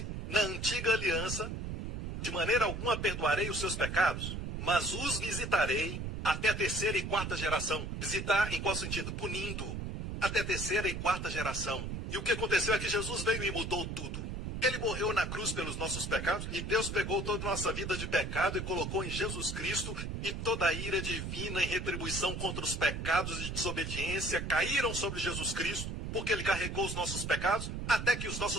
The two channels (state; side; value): noise; right; rumble, 5 dB below the sound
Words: na antiga aliança, de maneira alguma perdoarei os seus pecados, mas os visitarei até a 3ª e 4ª geração. Visitar em qual sentido? Punindo. Até a 3ª e 4ª geração. E o que aconteceu é que Jesus veio e mudou tudo. Ele morreu na cruz pelos nossos pecados e Deus pegou toda a nossa vida de pecado e colocou em Jesus Cristo, e toda a ira divina em retribuição contra os pecados de desobediência caíram sobre Jesus Cristo, porque ele carregou os nossos pecados, até que os